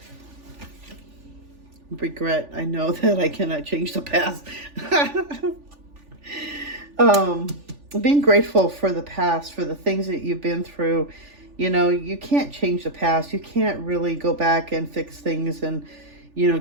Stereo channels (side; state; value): left; late; 3.4 ms